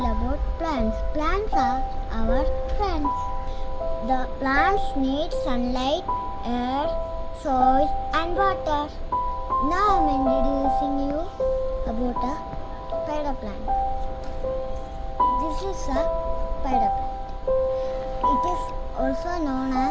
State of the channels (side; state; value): both; identical; correlation 1.00